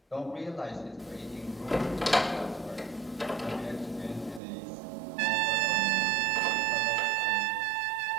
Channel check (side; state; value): left; drops out; at 4.4 s